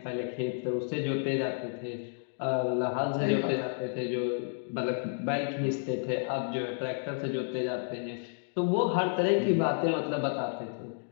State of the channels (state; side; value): silent; right; digital silence